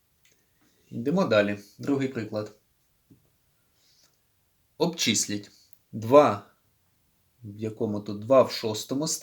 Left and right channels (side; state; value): both; identical; correlation 1.00